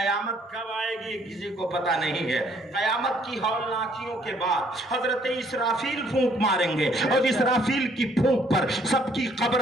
کب آئے گی کسی کو پتا نہیں ہے. قیامت کی ہولناکیوں کے بعد حضرت اسرافیل پھونک ماریں گے اور اسرافیل کی پھونک پر سب کی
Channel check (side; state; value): both; normal; correlation 0.64